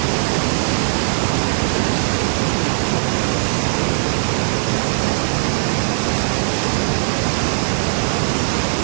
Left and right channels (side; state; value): left; silent; digital silence